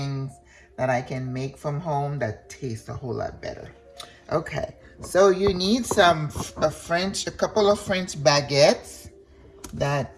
that I can make from home that taste a whole lot better. Okay, so you need a couple of French baguettes. That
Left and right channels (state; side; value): identical; both; correlation 1.00